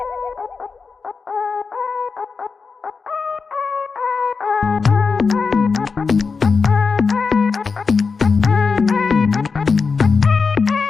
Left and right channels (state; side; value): quieter; right; 4.9 dB